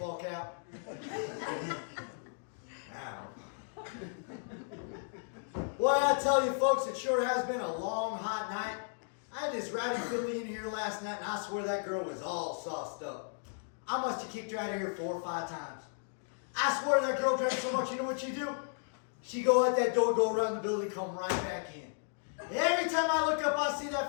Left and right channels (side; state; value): right; silent; digital silence